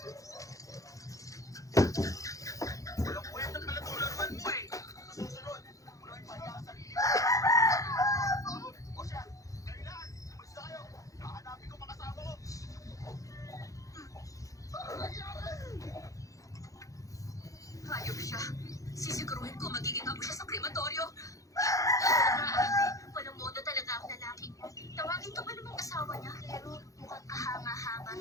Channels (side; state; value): right; late; 0.16 ms